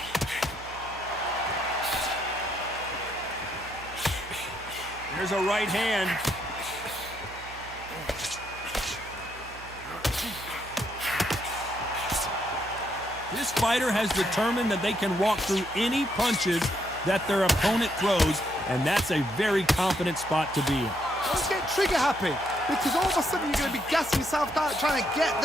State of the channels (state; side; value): noise; right; hum, 17 dB below the sound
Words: There's a right hand. This fighter has determined that they can walk through any punches that their opponent throws, and that's a very confident spot to be in. Don't get trigger happy, because all of a sudden you're going to be gassing yourself out trying to get